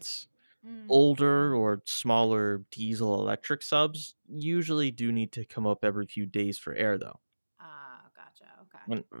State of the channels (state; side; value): inverted; both; correlation -1.00